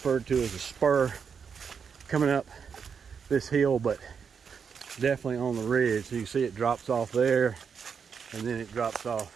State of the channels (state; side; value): quieter; left; 6.5 dB